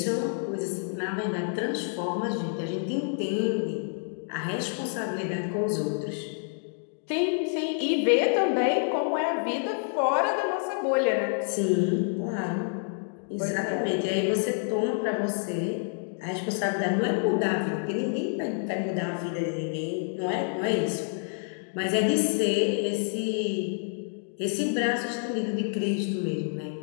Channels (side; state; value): right; silent; 59 dB below the other